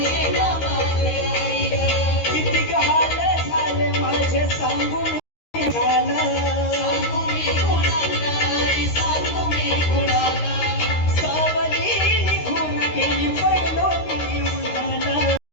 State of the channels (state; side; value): late; right; 13 ms